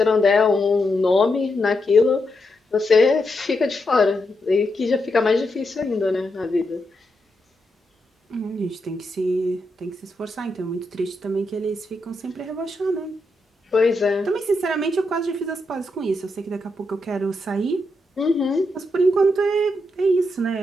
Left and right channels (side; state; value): both; normal; correlation 0.83